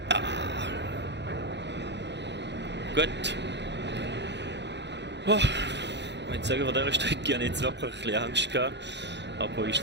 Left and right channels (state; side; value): late; left; 0.51 ms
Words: Gut. Oh. Ich würde sagen, von dieser Strecke habe ich jetzt wirklich ein bisschen Angst gehabt. Aber